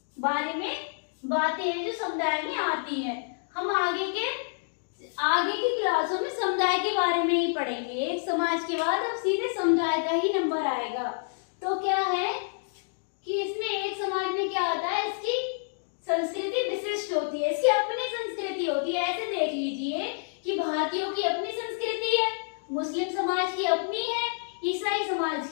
बारे में बातें हैं जो समुदाय में आती हैं। हम आगे की क्लासों में समुदाय के बारे में ही पढ़ेंगे। एक समाज के बाद अब सीधे समुदाय का ही नंबर आएगा। तो क्या है कि इसमें एक समाज में क्या होता है? इसकी संस्कृति विशिष्ट होती है, इसकी अपनी संस्कृति होती है। ऐसे देख लीजिए कि भारतीयों की अपनी संस्कृति है, मुस्लिम समाज की अपनी है, ईसाई समाज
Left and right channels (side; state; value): right; silent; digital silence